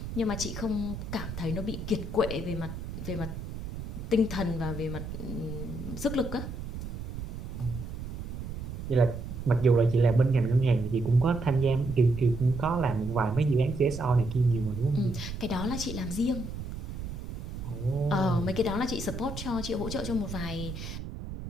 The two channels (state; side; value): noise; right; rumble, 7 dB below the sound